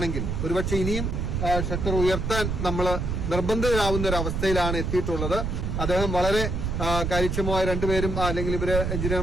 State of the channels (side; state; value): right; noise; rumble, 1 dB below the sound